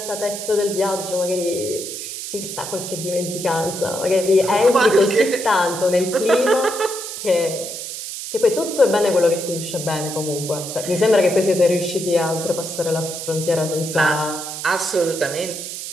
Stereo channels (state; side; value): noise; right; hiss, 8 dB below the sound